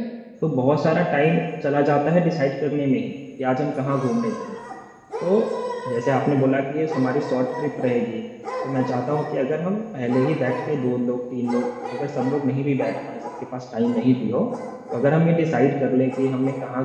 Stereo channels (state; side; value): identical; both; correlation 1.00